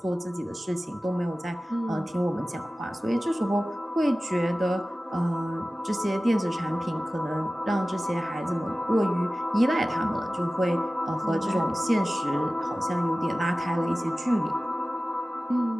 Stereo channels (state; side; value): normal; both; correlation 0.96